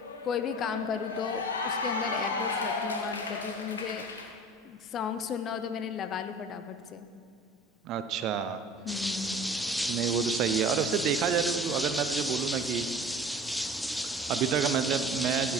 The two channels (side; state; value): both; normal; correlation 0.43